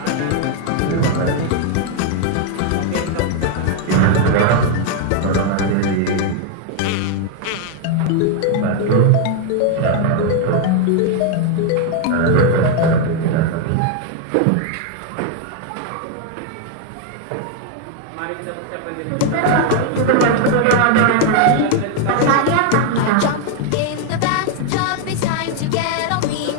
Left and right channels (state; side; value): different; both; correlation 0.01